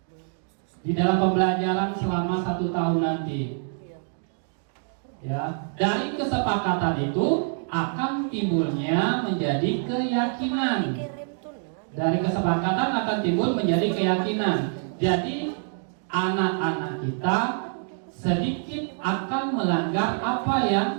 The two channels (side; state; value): left; silent; 61 dB below the other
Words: di dalam pembelajaran selama 1 tahun nanti. Ya, dari kesepakatan itu akan timbulnya menjadi keyakinan. Dari kesepakatan akan timbul menjadi keyakinan. Jadi anak-anak kita sedikit akan melanggar apa